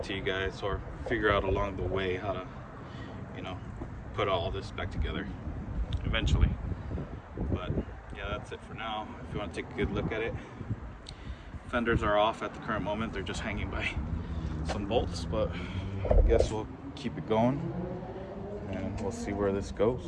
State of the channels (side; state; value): both; identical; correlation 1.00